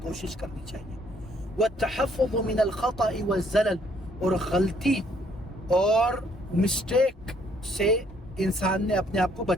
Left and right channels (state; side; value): normal; both; correlation 0.66